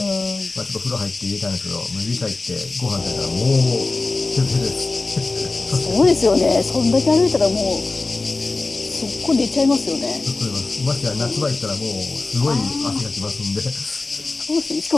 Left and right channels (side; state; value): right; quieter; 3.5 dB